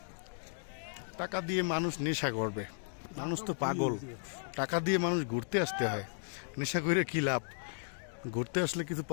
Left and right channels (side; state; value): right; silent; digital silence